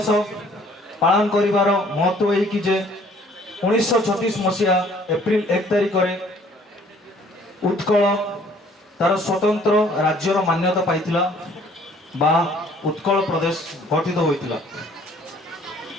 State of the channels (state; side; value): normal; both; correlation 0.58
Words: ପାଳନ କରିବାର ମହତ୍ତ୍ୱ ଏହିକି ଯେ 1936 ମସିହା ଏପ୍ରିଲ 1 ତାରିଖରେ ଉତ୍କଳ ତାର ସ୍ୱତନ୍ତ୍ର ରାଜ୍ୟର ମାନ୍ୟତା ପାଇଥିଲା ବା ଉତ୍କଳ ପ୍ରଦେଶ ଗଠିତ ହୋଇଥିଲା।